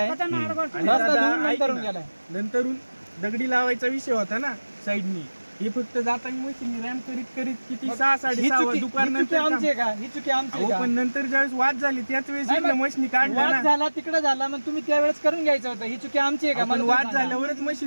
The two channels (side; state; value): both; inverted; correlation -1.00